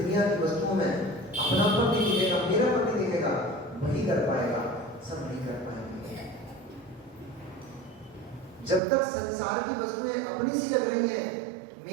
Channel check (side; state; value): left; drops out; at 8.8 s